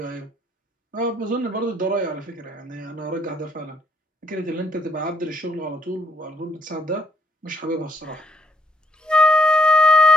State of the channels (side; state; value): both; normal; correlation 0.71